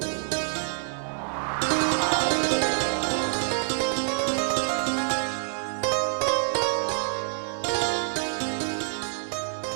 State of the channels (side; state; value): left; silent; 60 dB below the other